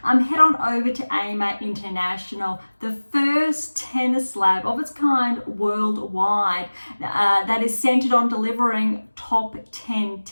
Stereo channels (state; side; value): inverted; both; correlation -1.00